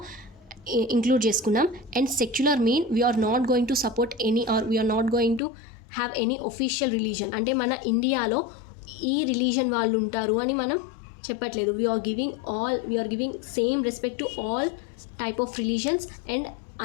ఇంక్లూడ్ చేసుకున్నాం. And secular mean we are not going to support any or we are not going to have any official religion. అంటే మన ఇండియాలో ఈ రిలీజన్ వాళ్ళు ఉంటారు అని మనం చెప్పట్లేదు. We are giving same respect to all type of religions and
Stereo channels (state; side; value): drops out; right; at 5.4 s